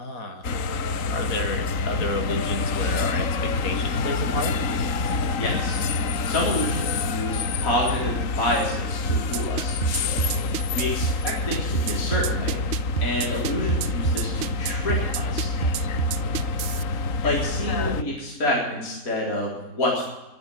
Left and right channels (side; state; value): right; late; 3.8 ms